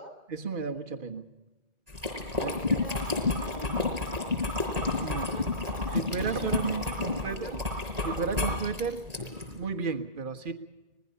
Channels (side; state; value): left; late; 1.8 ms